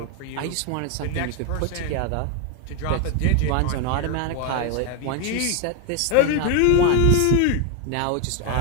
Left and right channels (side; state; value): both; different; correlation 0.01